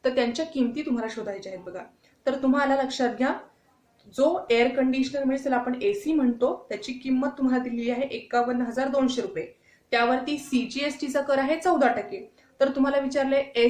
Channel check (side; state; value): both; identical; correlation 1.00